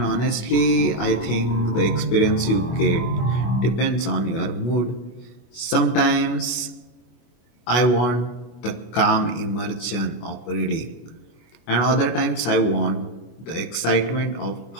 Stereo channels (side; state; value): right; late; 25 ms